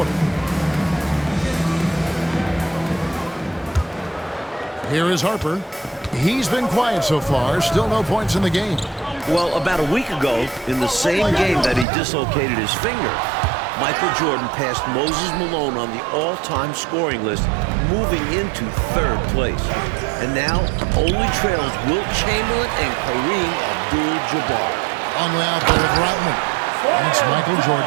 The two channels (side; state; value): left; drops out; at 11.9 s